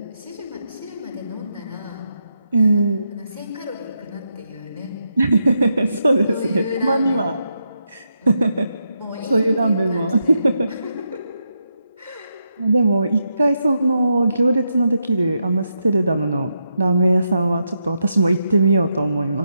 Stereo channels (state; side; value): inverted; both; correlation -0.83